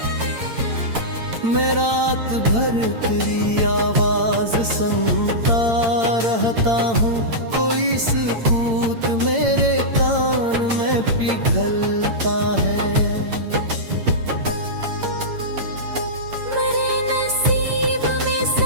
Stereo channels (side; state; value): left; late; 8.8 ms